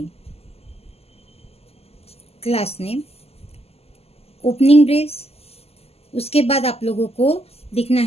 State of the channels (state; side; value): late; right; 0.29 ms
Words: ओपनिंग ब्रेस। उसके बाद आप लोगों को लिखना